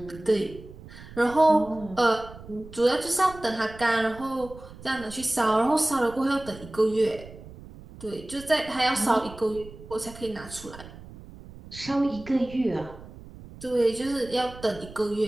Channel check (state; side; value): noise; right; rumble, 17 dB below the sound